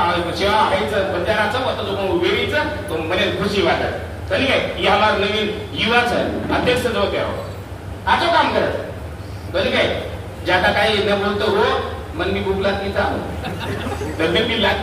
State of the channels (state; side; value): identical; both; correlation 1.00